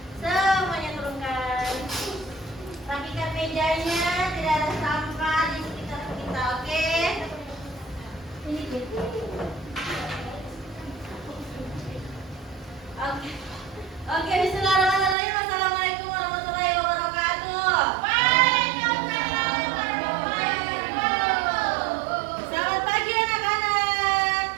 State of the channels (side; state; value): left; drops out; at 15.2 s